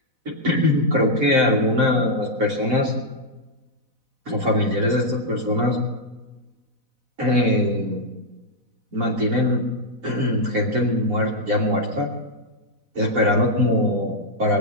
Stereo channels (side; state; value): left; late; 4.0 ms